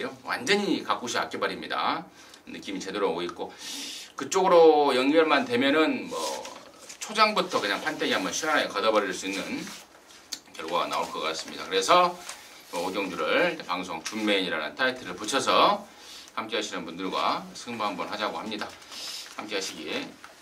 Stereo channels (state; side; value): identical; both; correlation 1.00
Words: 완전히 가꾸시 악기발입니다. 느낌이 제대로 오고 있고 그쪽으로 연결만 되면은 뭐 초장부터 그냥 판때기 한번 시원하게 걷어버릴 수 있는 결과가 나올 것 같습니다. 그래서 오경주를 방송 준메인이라는 타이틀을 붙여서 함께 하시는 분들과 승부 한번 하자고 합니다. 함께 하시기